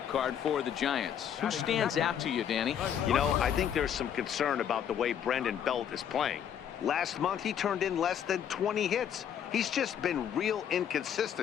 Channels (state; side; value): quieter; right; 9.0 dB